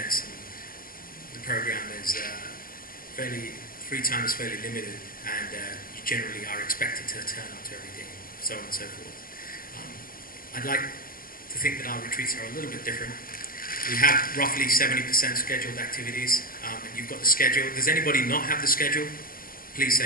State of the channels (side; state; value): right; late; 0.42 ms